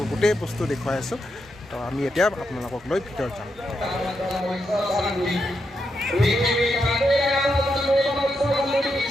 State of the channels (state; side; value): normal; both; correlation 0.83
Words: গোটেই বস্তু দেখুৱাই আছোঁ। তো আমি এতিয়া আপোনালোকক লৈ ভিতৰত যাম।